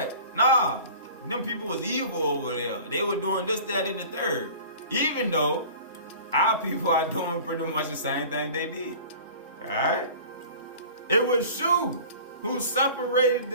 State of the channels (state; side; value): inverted; both; correlation -0.42